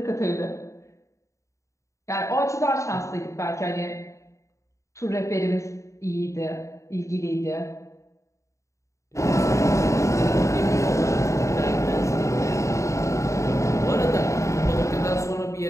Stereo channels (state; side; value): late; right; 0.15 ms